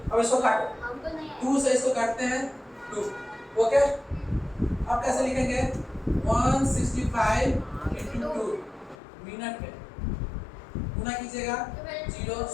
अब इसको काटो। 2 से इसको काटते हैं 2। ओके, अब कैसे लिखेंगे? 165 × 2 मिनट में गुना कीजिएगा। 0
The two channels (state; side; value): drops out; right; at 9.0 s